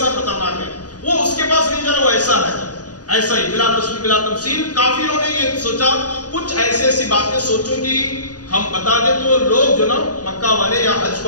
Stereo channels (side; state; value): right; late; 0.68 ms